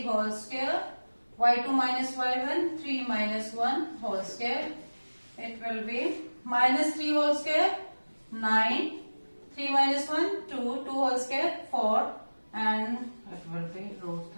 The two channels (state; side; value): inverted; both; correlation -1.00